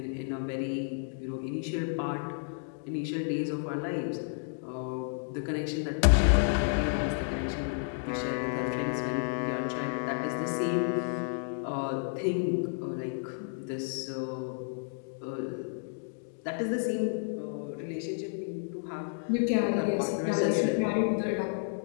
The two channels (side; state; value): right; silent; digital silence